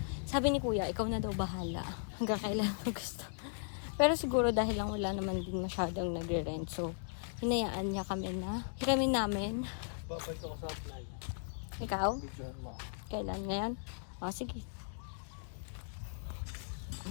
Sabi ni kuya, ikaw na daw bahala. Hanggang kailan mo gusto. Pero siguro dahil lang wala naman din masyadong nagre-rent. So, hinayaan niya kami na hiramin namin. Ikaw? Kailan ngayon? O, sige.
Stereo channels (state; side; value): silent; right; digital silence